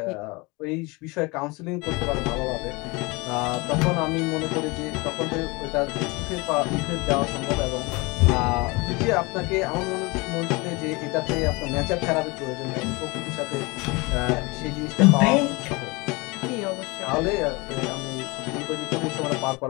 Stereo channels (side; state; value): right; quieter; 25.8 dB